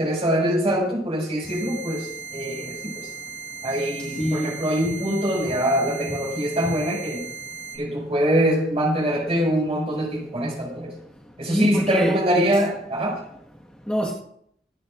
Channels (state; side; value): normal; both; correlation 0.60